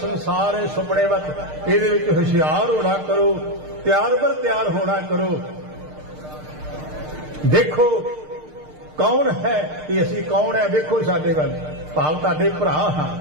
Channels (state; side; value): late; left; 6.6 ms